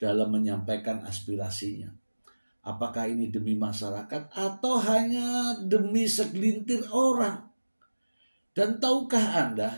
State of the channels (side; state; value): both; inverted; correlation -1.00